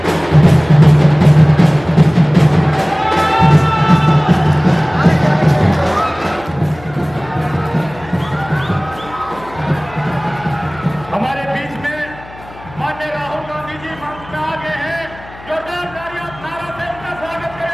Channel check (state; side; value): noise; left; hum, 20 dB below the sound